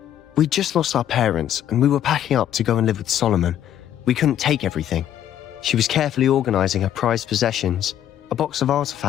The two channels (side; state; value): right; quieter; 10.8 dB